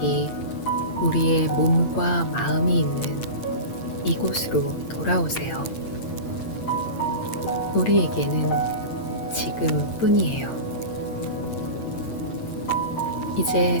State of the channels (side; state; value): right; late; 8.8 ms